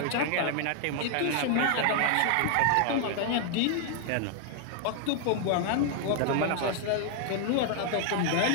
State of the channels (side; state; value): both; different; correlation 0.00